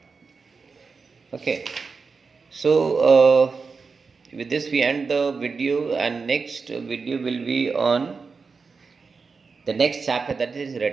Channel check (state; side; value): quieter; left; 4.8 dB